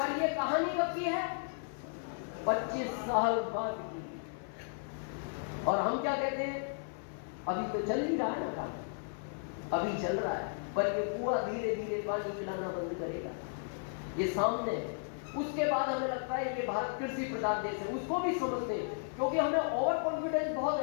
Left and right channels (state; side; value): silent; right; 55 dB below the other